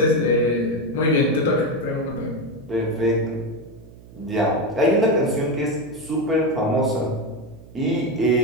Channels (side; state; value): right; noise; hum, 21 dB below the sound